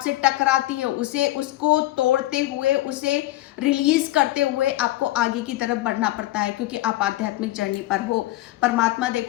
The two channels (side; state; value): right; quieter; 16.6 dB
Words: टकराती है, उसको तोड़ते हुए, उसे रिलीज करते हुए आपको आगे की तरफ बढ़ना पड़ता है, क्योंकि आप आध्यात्मिक जर्नी पर हो। परमात्मा